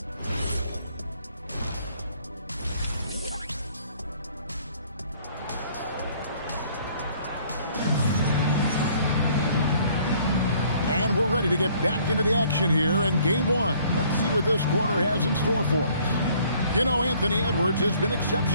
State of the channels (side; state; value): both; inverted; correlation -0.60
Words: And we're ready to get back into the action here in game one. Let's see what this quarter has in store for us. You know, Anthony Edwards has been